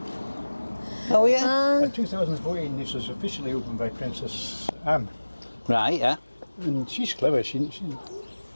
Oh yeah? In 2014 this was officially opened by Princess Anne. Right, yeah. And she's clever, she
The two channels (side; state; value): both; inverted; correlation -1.00